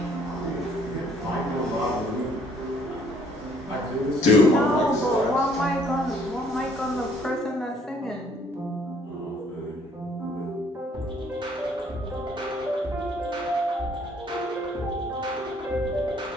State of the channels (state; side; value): normal; both; correlation 0.62